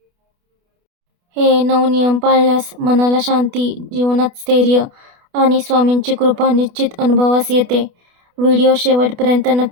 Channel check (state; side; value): late; left; 28 ms